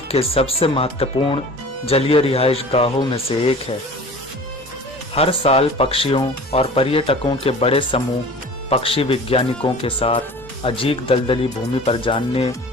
के सबसे महत्वपूर्ण जलीय रिहाइश गाहों में से एक है। हर साल पक्षियों और पर्यटकों के बड़े समूह पक्षी वैज्ञानिकों के साथ अजीब दलदली भूमि पर जानने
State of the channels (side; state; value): both; normal; correlation 0.42